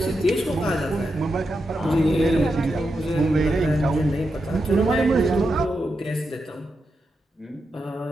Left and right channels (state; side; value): normal; both; correlation 0.87